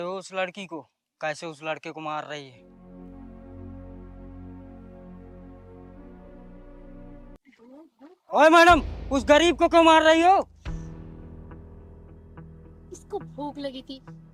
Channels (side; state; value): both; identical; correlation 1.00